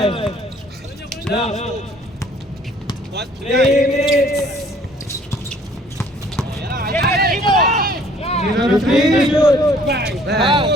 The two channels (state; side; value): normal; both; correlation 0.57